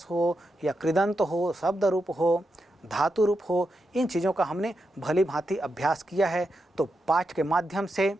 हो या कृदंत हो, शब्द रूप हो, धातु रूप हो, इन चीज़ों का हमने भली भांति अभ्यास किया है। तो पाठ के माध्यम से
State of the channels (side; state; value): both; normal; correlation 0.86